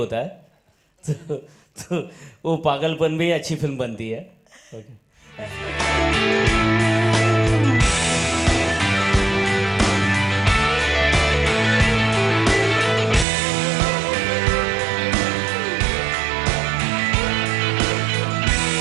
है. तो वो पागलपन भी अच्छी फिल्म बनती है.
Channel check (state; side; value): drops out; left; at 13.2 s